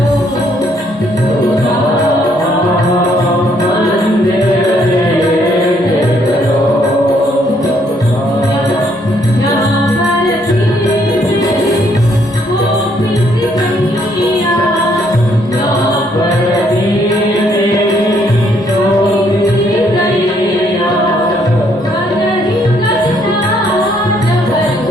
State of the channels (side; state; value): both; normal; correlation 0.69